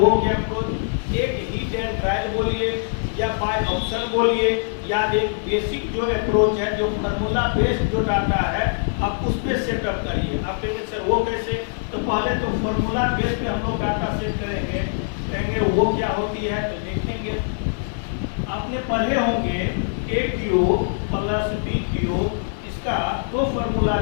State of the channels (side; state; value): right; silent; digital silence